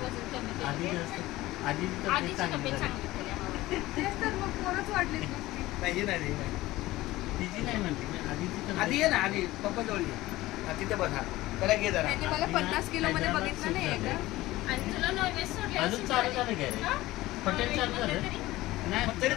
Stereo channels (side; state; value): right; quieter; 17.7 dB